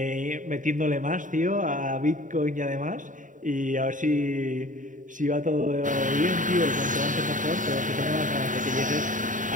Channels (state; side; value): late; left; 0.38 ms